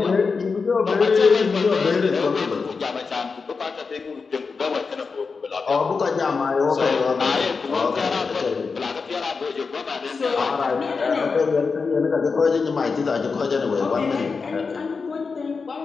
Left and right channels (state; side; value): quieter; right; 4.8 dB